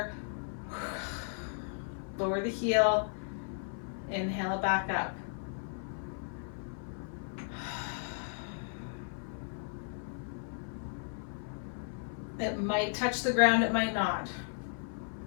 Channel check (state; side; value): silent; right; 54 dB below the other